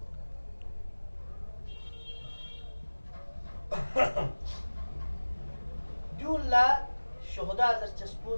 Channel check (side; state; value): both; inverted; correlation -1.00